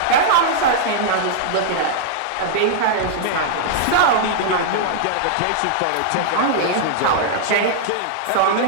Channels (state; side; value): different; both; correlation -0.01